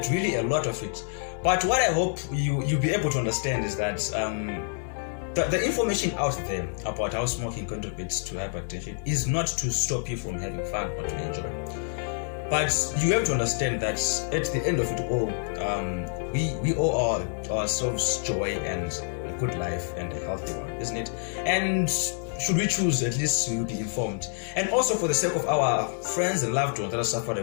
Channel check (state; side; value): silent; right; 60 dB below the other